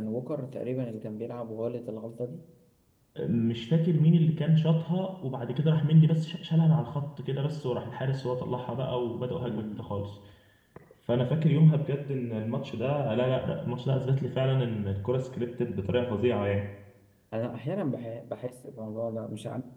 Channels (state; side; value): identical; both; correlation 1.00